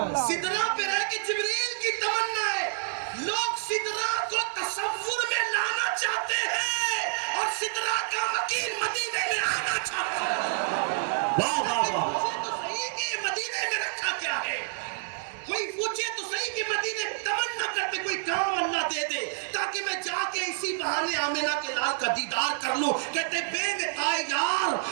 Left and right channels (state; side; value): silent; left; digital silence